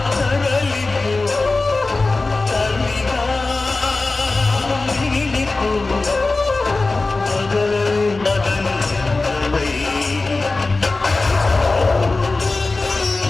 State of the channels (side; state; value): right; quieter; 3.5 dB